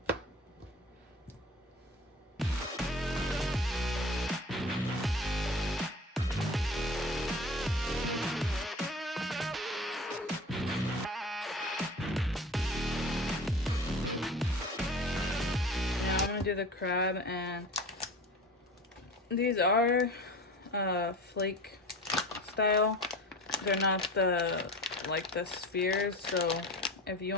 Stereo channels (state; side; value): normal; both; correlation 0.36